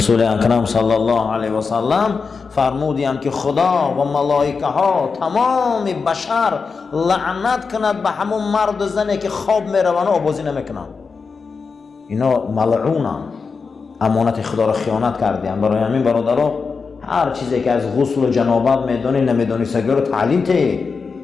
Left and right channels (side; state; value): right; quieter; 5.0 dB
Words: اکرم صلی الله علیه و سلم فرمودند که خدا و ملائکه ها تمام بشر لعنت کند به همون مرد و زنی که خواب میروند و آبازی نمیکنند. اینا ملعونن، امانت خدا را خیانت کردند. برای همین برادرها هر چیزی که از غسل و جنابت میدونی نمیدونی سگی رو تعلیم ته.